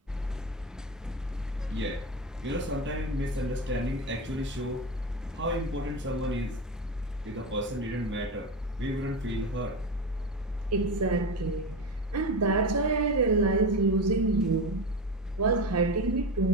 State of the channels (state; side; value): normal; both; correlation 0.21